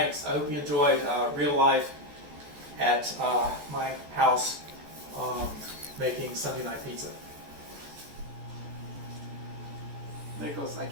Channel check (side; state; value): left; late; 14 ms